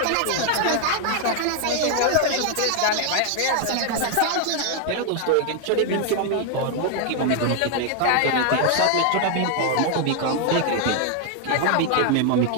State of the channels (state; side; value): different; both; correlation 0.00